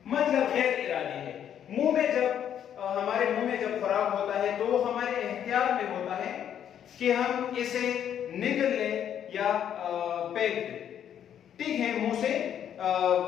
مطلب غیر ارادی ہے. منہ میں جب ہمارے منہ میں جب خوراک ہوتا ہے تو وہ ہمارے اختیار میں ہوتا ہے کہ ہم اسے نگل لیں یا پھینک دے، ٹھیک ہے، منہ سے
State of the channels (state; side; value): quieter; right; 9.5 dB